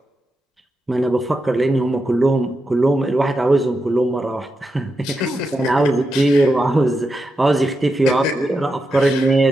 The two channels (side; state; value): both; normal; correlation 0.87